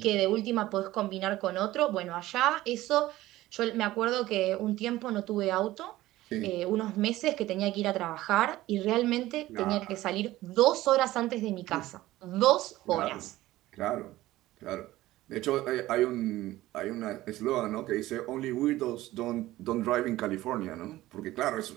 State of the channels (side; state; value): left; quieter; 16.5 dB